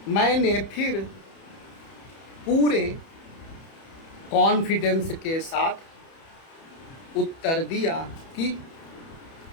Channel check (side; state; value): right; late; 31 ms